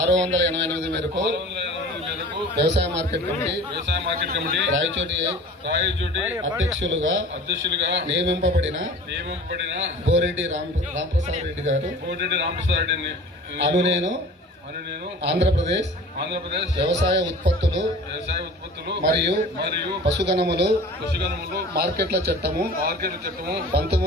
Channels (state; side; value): normal; both; correlation 0.41